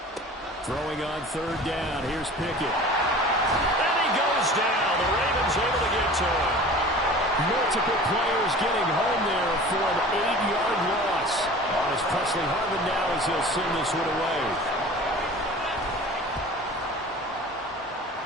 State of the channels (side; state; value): both; normal; correlation 0.41